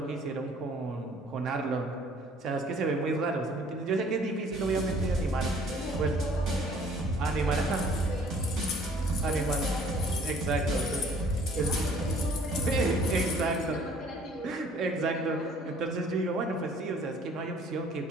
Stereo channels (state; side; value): normal; both; correlation 0.56